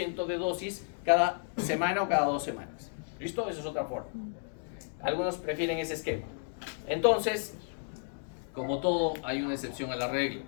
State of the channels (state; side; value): silent; right; digital silence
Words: de dosis cada semana o cada 2 semanas. ¿Listo? Esa es otra forma. Algunos prefieren ese esquema. Entonces, como todo, hay una excepción a la regla.